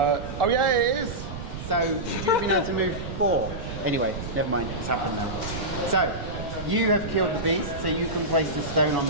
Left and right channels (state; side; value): noise; right; rumble, 9 dB below the sound